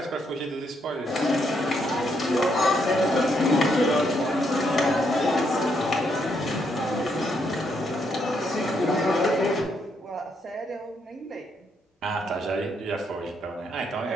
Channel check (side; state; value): both; normal; correlation 0.75